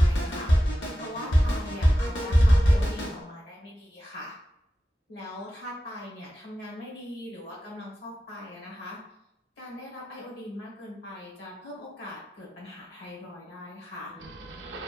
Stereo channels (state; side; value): normal; both; correlation 0.93